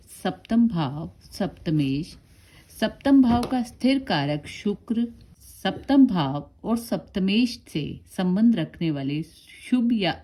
सप्तम भाव सप्तमेश, सप्तम भाव का स्थिर कारक शुक्र, सप्तम भाव और सप्तमेश से संबंध रखने वाले शुभ या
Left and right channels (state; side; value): identical; both; correlation 1.00